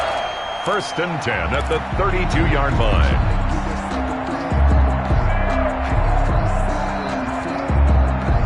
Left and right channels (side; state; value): both; identical; correlation 1.00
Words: 1st and 10 at the 32-yard line.